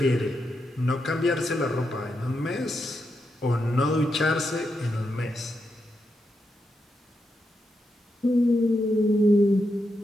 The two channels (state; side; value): normal; both; correlation 0.84